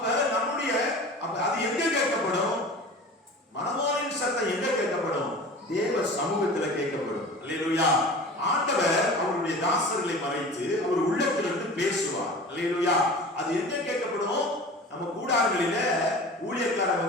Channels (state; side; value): normal; both; correlation 0.38